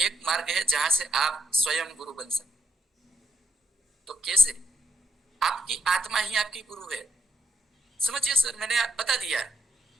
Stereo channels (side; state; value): both; normal; correlation 0.78